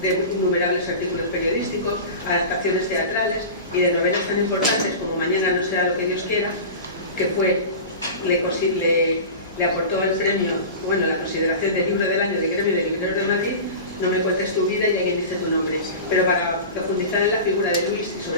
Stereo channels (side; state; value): both; inverted; correlation -0.31